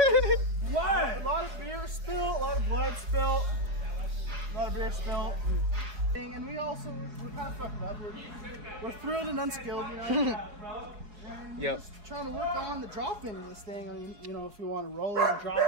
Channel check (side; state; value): left; late; 4.8 ms